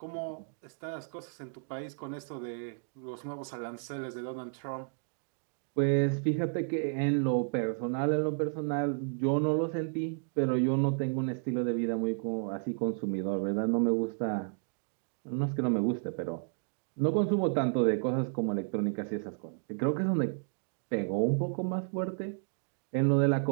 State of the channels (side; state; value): left; silent; digital silence